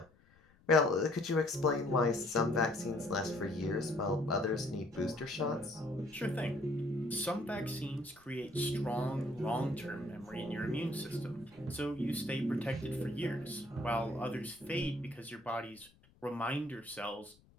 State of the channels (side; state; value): left; noise; rumble, 29 dB below the sound